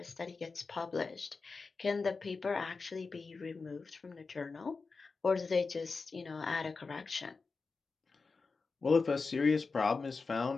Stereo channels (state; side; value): quieter; right; 4.4 dB